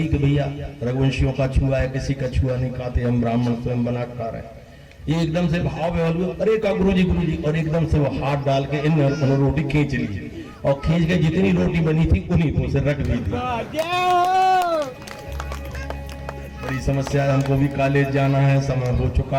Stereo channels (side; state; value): both; identical; correlation 1.00